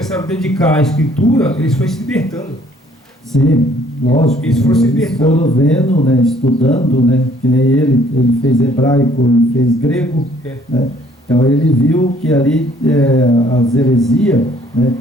a dedicar à escritura, eles foram se libertando. Sim, lógico. Eles foram vendo, né, estudando, né, que nem ele fez hebraico, ele fez grego, né? Então ele viu que ali as heresias, né,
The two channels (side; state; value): both; normal; correlation 0.60